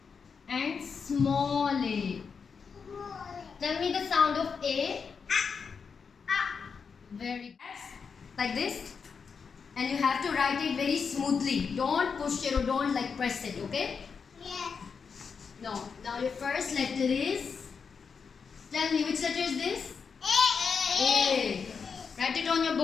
and small a. Tell me the sound of A. Very like this. And you have to write it very smoothly. Don't push it or don't like press it, okay? Yes. No. Now your first letter is. Tell me which letter is this? A. Write it on your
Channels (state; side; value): quieter; right; 5.8 dB